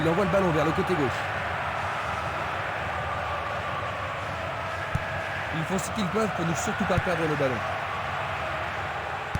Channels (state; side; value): identical; both; correlation 1.00